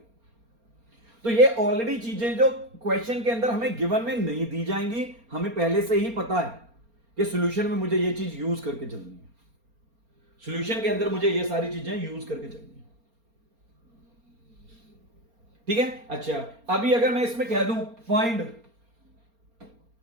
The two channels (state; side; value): late; left; 4.3 ms